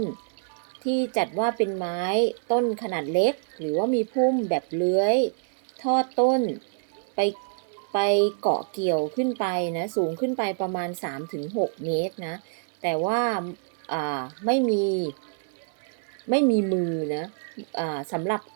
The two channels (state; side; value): silent; left; 61 dB below the other